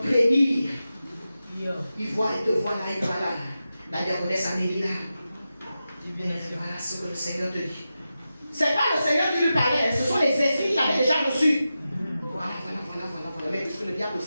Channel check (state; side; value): inverted; both; correlation -0.92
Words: Il voit, il te voit là, il voit là. La diaconesse Amélie là. Voilà ce que le Seigneur te dit. C'est pas le Seigneur qui lui parlait, ce sont les esprits qu'il avait déjà reçus. Voilà. Mais puisque le diable